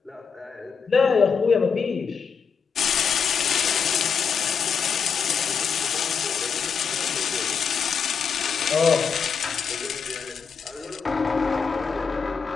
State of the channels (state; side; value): quieter; right; 6.1 dB